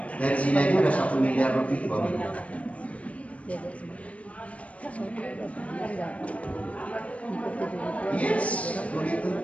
Dari sini aja udah 1 miliar lebih Bapak Ibu. Yes, begitu.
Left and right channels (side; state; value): right; late; 0.065 ms